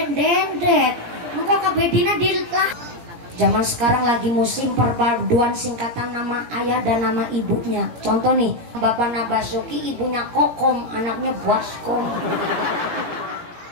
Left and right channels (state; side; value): late; left; 18 ms